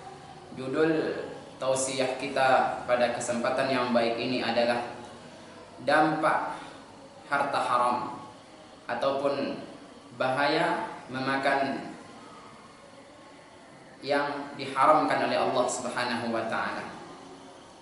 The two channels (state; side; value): identical; both; correlation 1.00